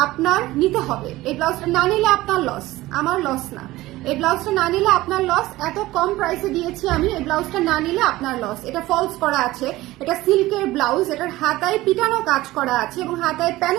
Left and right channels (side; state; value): left; quieter; 17.8 dB